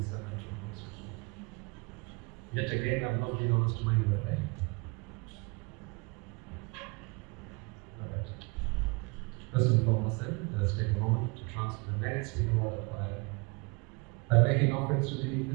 is a mental process. Yet again, I've not been honest to my word. Alright. First and foremost, then, let's take a moment to transfer the merits in order by making offerings to the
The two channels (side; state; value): left; quieter; 29.9 dB